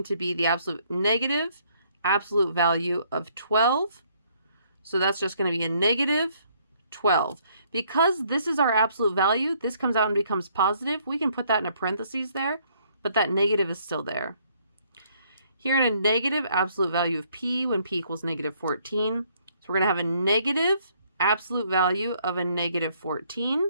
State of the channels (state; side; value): inverted; both; correlation -0.66